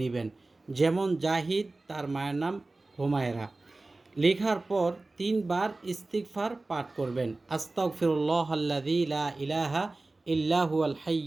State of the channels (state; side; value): quieter; left; 3.1 dB